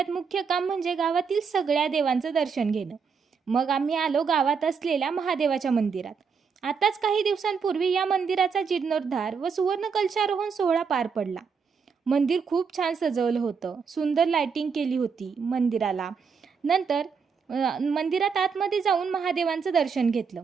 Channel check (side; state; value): left; quieter; 5.8 dB